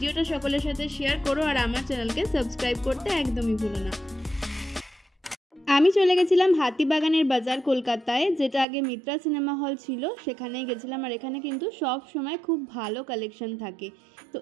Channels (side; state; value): left; drops out; at 8.7 s